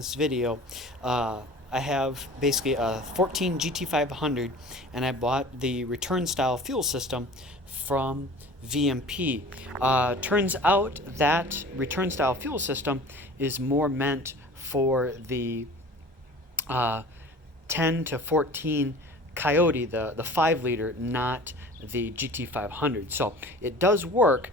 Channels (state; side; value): normal; both; correlation 0.42